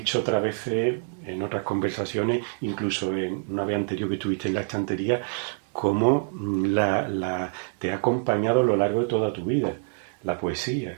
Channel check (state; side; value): silent; left; 58 dB below the other